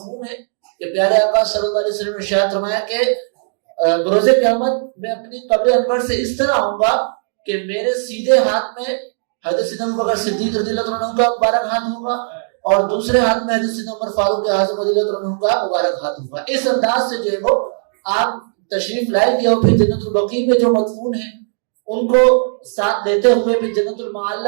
ہے کہ پیارے آقا صلی اللہ علیہ وسلم نے ارشاد فرمایا کہ بروز قیامت میں اپنی قبر انور سے اس طرح آؤں گا کہ میرے سیدھے ہاتھ میں حضرت سیدنا ابو بکر صدیق رضی اللہ عنہ کا مبارک ہاتھ ہوگا، اور دوسرے ہاتھ میں حضرت سیدنا عمر فاروق اعظم رضی اللہ عنہ کا مبارک ہاتھ ہوگا۔ اس انداز سے جو ہے وہ آپ تشریف لائیں گے، اور پھر جنت البقیع میں جو مدفون ہیں ان کو ساتھ دیتے ہوئے، پھر جنت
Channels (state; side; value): silent; left; digital silence